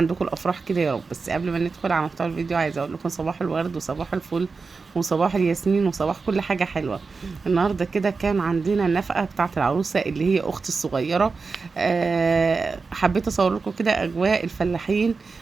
الافراح كده يا رب. بس قبل ما ندخل على محتوى الفيديو عايزه اقول لكم صباح الورد وصباح الفل وصباح الياسمين وصباح كل حاجه حلوه. النهارده كده كان عندنا النفقه بتاعه العروسه اللي هي اختي الصغيره. حبيت اصور لكم كده اجواء الفلاحين،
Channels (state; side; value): quieter; left; 4.5 dB